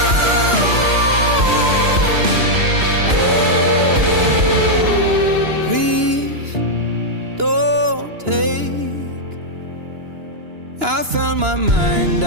Please don't take. I found my mind,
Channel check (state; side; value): late; left; 2.9 ms